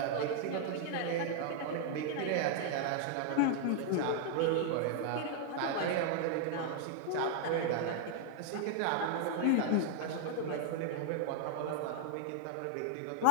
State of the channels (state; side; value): different; both; correlation 0.00